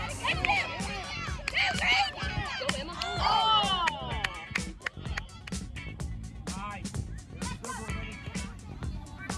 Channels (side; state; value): both; identical; correlation 1.00